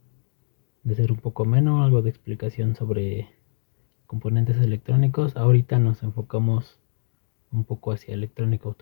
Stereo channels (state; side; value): silent; right; digital silence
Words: ser un poco menos, algo de explicación sobre componentes electrónicos. Ahorita nos enfocamos un poco hacia electrónica